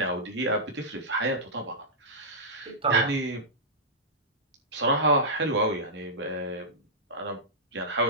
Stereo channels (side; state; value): both; normal; correlation -0.14